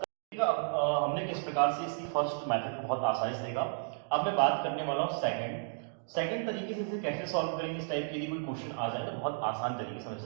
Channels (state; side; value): silent; left; digital silence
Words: हमने किस प्रकार से इसकी फर्स्ट मेथड को बहुत आसानी से देखा। अब मैं बात करने वाला हूँ सेकंड तरीके से इसे कैसे सॉल्व करेंगे। इस टाइप के यदि कोई क्वेश्चन आ जाए तो बहुत आसान तरीके से हम